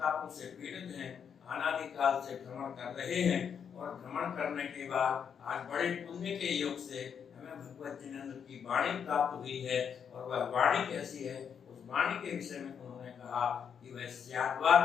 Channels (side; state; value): right; quieter; 7.4 dB